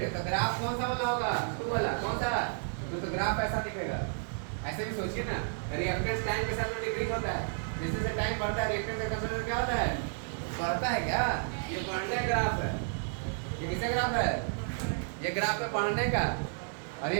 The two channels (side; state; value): left; silent; 56 dB below the other